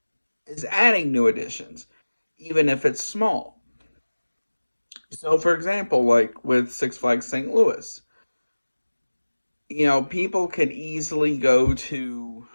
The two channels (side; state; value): both; inverted; correlation -1.00